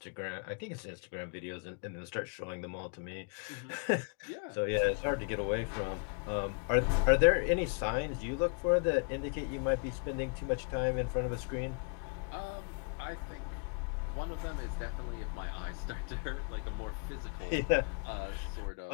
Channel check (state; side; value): quieter; right; 39.1 dB